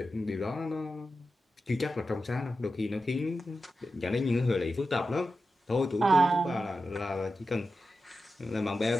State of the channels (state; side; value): normal; both; correlation 0.91